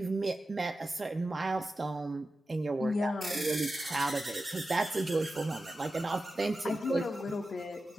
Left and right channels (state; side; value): normal; both; correlation 0.93